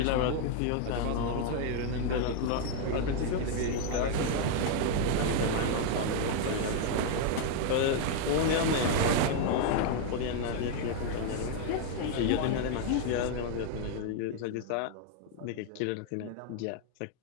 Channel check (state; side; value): different; both; correlation 0.00